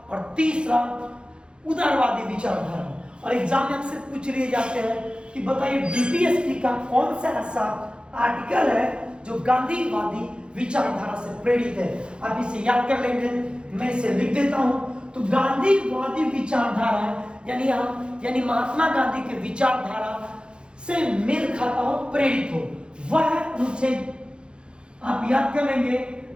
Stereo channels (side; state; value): left; late; 0.054 ms